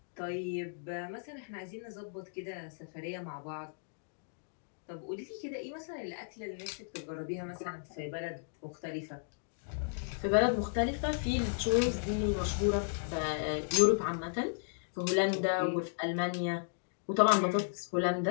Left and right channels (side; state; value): right; silent; digital silence